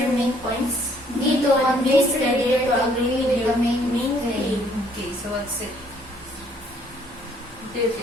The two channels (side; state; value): both; normal; correlation 0.64